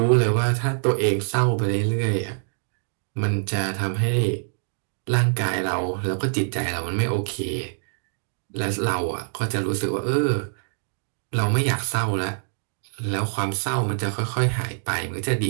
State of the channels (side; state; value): left; silent; digital silence